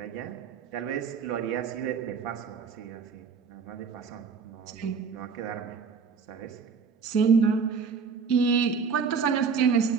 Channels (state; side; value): quieter; left; 5.8 dB